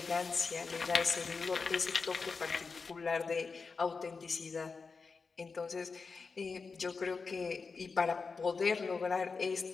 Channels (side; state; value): right; quieter; 4.7 dB